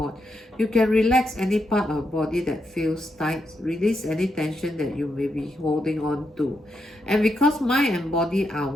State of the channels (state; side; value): normal; both; correlation 0.83